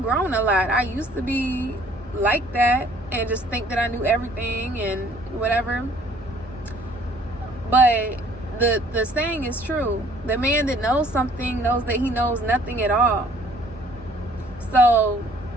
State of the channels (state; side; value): normal; both; correlation 0.58